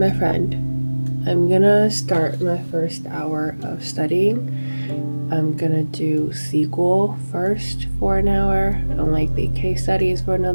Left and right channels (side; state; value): both; inverted; correlation -1.00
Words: my friend. I'm gonna start my first hour of studying. I'm gonna do SQL first for an hour, and likely case studies for